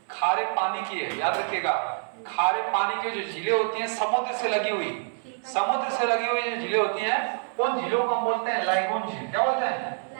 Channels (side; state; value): left; silent; 60 dB below the other